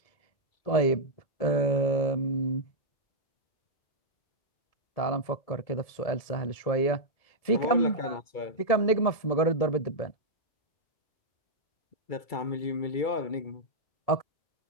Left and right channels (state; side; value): late; right; 1.7 ms